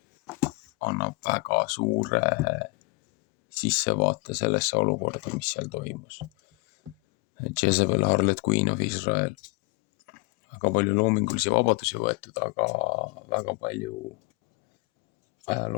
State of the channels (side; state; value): right; quieter; 27.7 dB